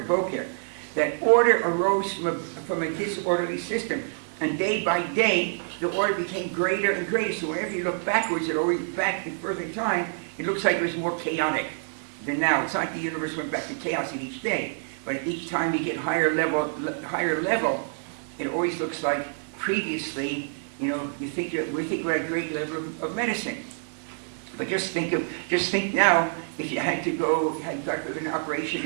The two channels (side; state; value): left; silent; digital silence